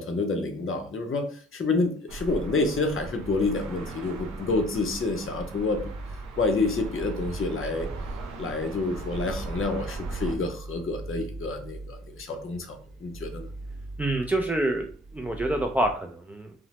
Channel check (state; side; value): normal; both; correlation 0.51